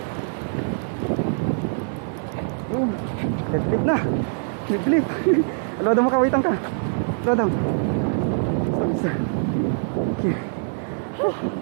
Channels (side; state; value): left; silent; digital silence